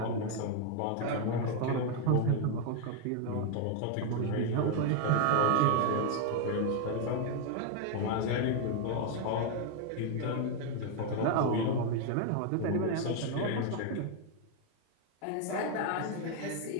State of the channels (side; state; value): both; different; correlation 0.00